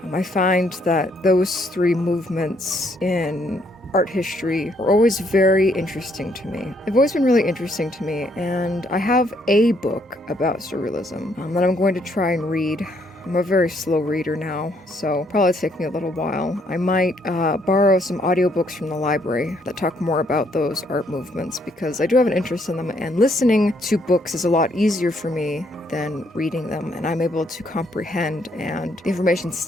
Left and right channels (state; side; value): normal; both; correlation 0.70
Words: I find that those three movements in art history are always very interesting to me. They've always been really interesting to me, and I have a book about Surrealism that I'm going to try and read. I'm a very slow reader now, so probably take me a little while. I might borrow some audiobooks from the library that talk more about those art movements, because I do have an interest in them, and listening to books is a lot easier for me than reading them, and I'm able to comprehend, and the information